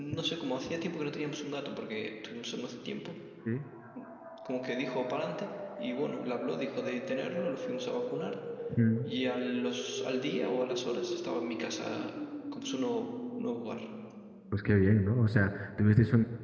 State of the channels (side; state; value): both; identical; correlation 1.00